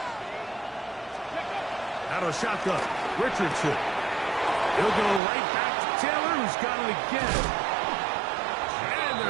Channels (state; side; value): drops out; left; at 5.2 s